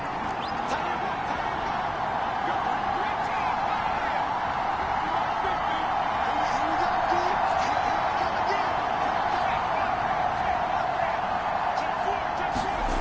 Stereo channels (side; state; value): both; identical; correlation 1.00